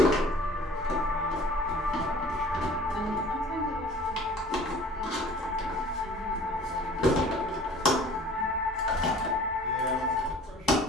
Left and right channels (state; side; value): normal; both; correlation 0.48